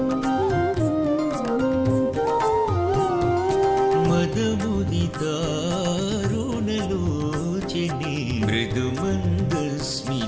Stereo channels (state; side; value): identical; both; correlation 1.00